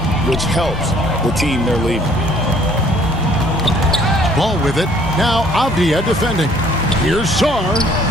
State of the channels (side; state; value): both; normal; correlation 0.59